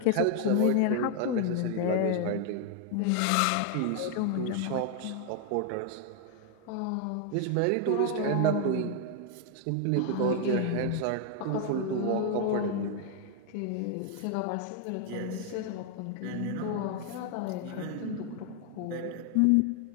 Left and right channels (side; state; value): both; different; correlation 0.00